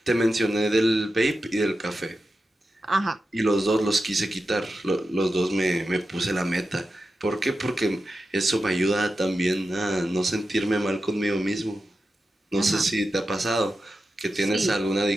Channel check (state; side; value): normal; both; correlation 0.91